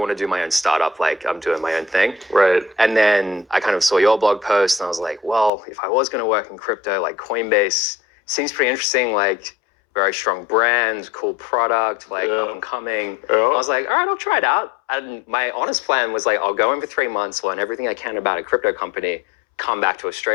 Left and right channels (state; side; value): drops out; right; at 5.5 s